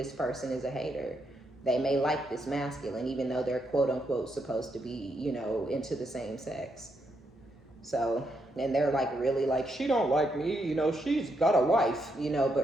person is a hater. They may like this masculine, even though they're quote unquote supposed to be, into the same sex. So, and they're like, really, like, she don't like me, she's got a wife,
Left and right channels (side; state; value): both; normal; correlation 0.79